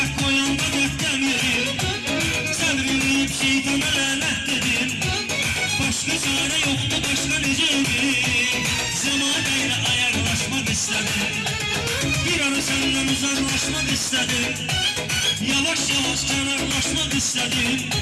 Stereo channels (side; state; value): both; identical; correlation 1.00